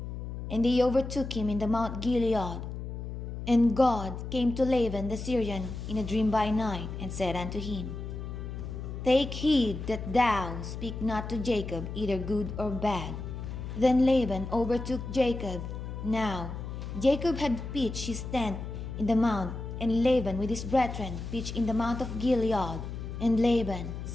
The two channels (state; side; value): noise; left; hum, 7 dB below the sound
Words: And they overtook him in the Mount Gilead. And God came to Laban the Syrian in a dream by night, and said unto him, Take heed that thou speak not to Jacob either good or bad. Then Laban overtook Jacob. Now Jacob had pitched his tent in the mount, and Laban with his brethren pitched in the mount of Gilead. And Laban